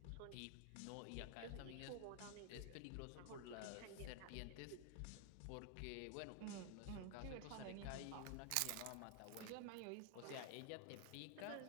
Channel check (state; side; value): different; both; correlation 0.00